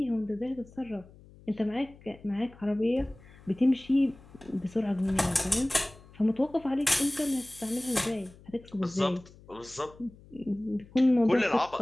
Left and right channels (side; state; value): left; noise; hum, 23 dB below the sound